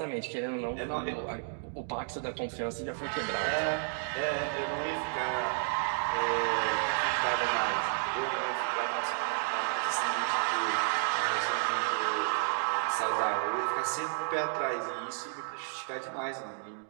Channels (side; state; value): left; silent; digital silence